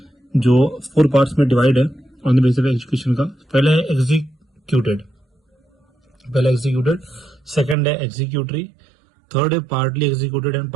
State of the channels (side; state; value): left; drops out; at 7.8 s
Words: जो 4 पार्ट्स में डिवाइड है on the basis of execution का। पहला है एग्जीक्यूटेड, सेकंड है एग्जीक्यूटरी, थर्ड है partly executed and